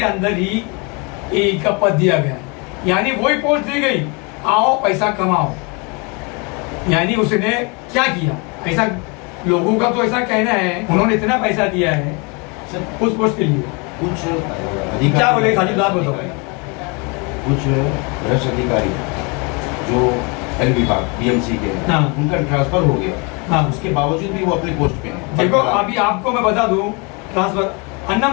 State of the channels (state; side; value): quieter; right; 31.0 dB